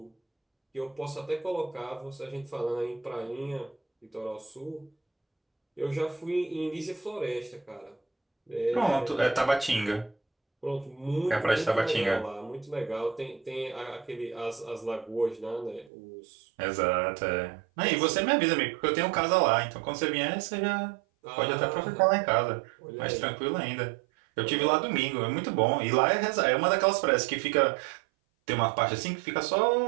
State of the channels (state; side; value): drops out; left; at 15.9 s